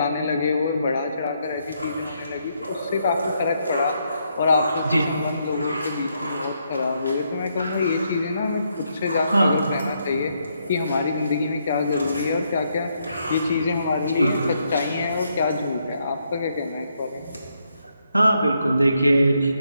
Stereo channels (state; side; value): inverted; both; correlation -0.77